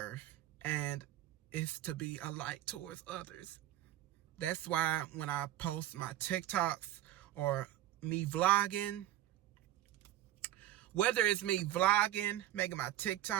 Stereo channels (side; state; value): left; quieter; 13.6 dB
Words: And it's to be a light towards others. That's why when I post my TikToks or me vlogging, whether it's me vlogging, making my